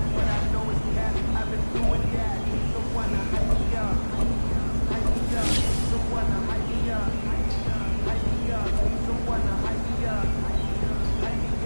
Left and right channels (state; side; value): inverted; both; correlation -1.00